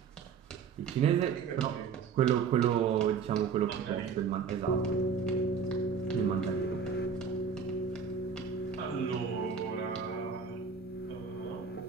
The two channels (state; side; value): quieter; left; 6.1 dB